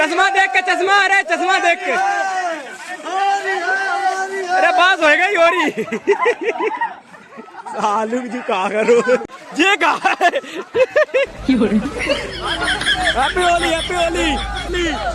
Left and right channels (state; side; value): identical; both; correlation 1.00